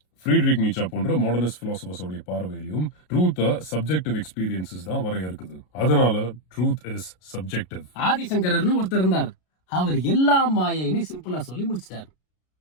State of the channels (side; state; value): right; late; 33 ms